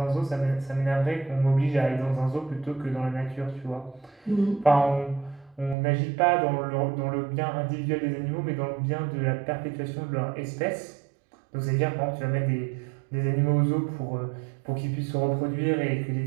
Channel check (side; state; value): left; drops out; at 5.8 s